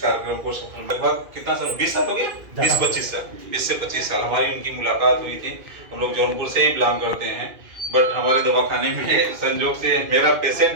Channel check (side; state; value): left; late; 2.4 ms